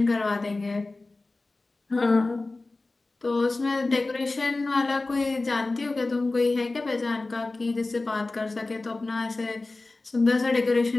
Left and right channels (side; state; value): right; quieter; 3.3 dB